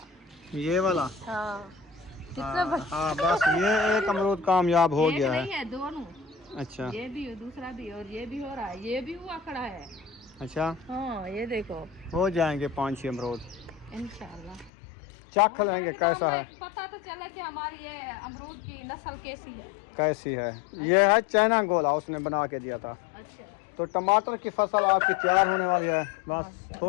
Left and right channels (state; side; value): drops out; right; at 14.7 s